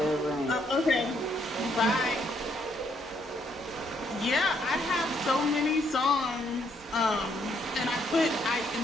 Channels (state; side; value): normal; both; correlation 0.71